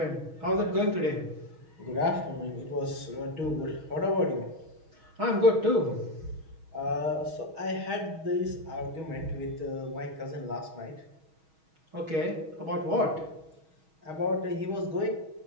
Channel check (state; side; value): late; left; 6.3 ms